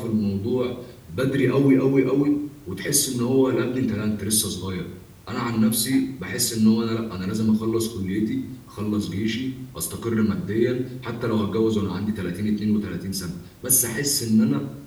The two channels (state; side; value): identical; both; correlation 1.00